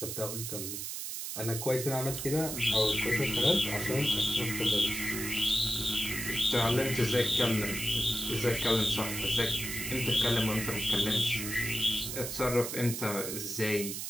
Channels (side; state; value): right; noise; hiss, 5 dB below the sound